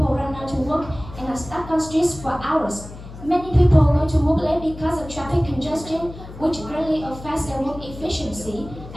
run out to work and are stuck on streets for hours. Many people go to work late because of traffic congestion, which greatly affects their work efficiency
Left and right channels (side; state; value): left; noise; hum, 15 dB below the sound